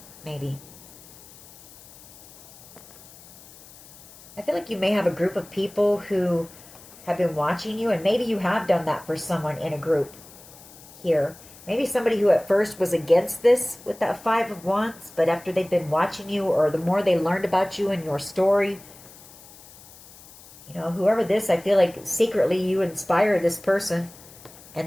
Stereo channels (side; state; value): left; noise; hiss, 21 dB below the sound